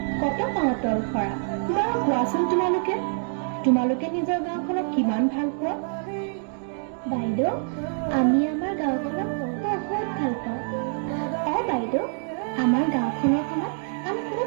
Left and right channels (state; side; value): silent; left; 57 dB below the other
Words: কত পাতল সৰা। বাৰু কোৱাচোন তোমালোকে নিজৰ গাঁওখনক কিমান ভাল পোৱা? বাইদেউ, আমি আমাৰ গাঁওখনক বহুত ভাল পাওঁ। বাইদেউ, আমাৰ গাঁওখনৰ খনত আমি কোনো